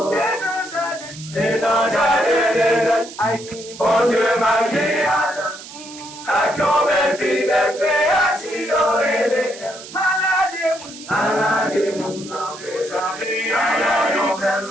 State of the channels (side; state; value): right; noise; hiss, 15 dB below the sound